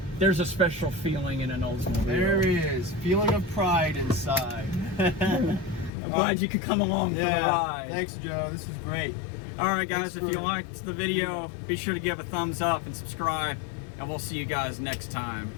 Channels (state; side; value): drops out; right; at 5.9 s